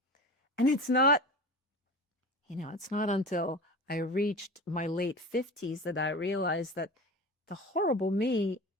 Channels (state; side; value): normal; both; correlation 0.32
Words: And it's not until I reached my late 50s that I realized that the horrible me